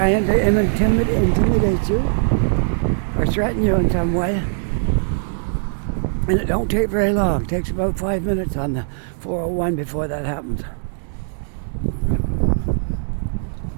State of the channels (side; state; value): left; silent; digital silence